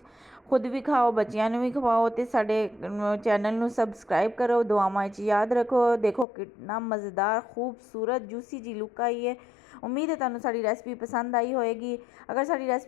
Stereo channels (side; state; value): right; drops out; at 6.2 s